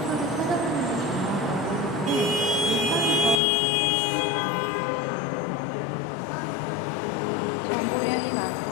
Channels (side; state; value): right; drops out; at 3.4 s